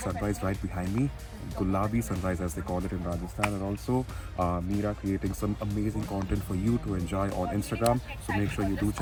right behind me, Gulabi sunrise as they call it in Rajasthan, and also Mira creating some amazing content for you to enjoy on Instagram. So make sure you do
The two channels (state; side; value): identical; both; correlation 1.00